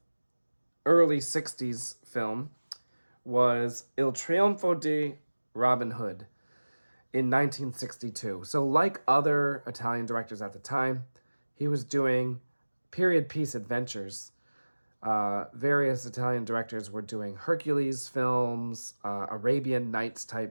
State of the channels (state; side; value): inverted; both; correlation -1.00